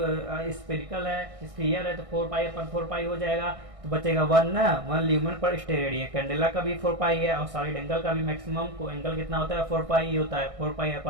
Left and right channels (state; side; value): late; left; 1.6 ms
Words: स्फेरिकल है, स्फीयर है, तो 4 पाई अपन 4 पाई हो जाएगा। तो बचेगा 1 ल्यूमेन पर स्टेरेडियन। कैंडेला का भी 4 पाई है और सॉलिड एंगल का भी मैक्सिमम को एंगल कितना होता है? 4 पाई ही होता है। 4 पाई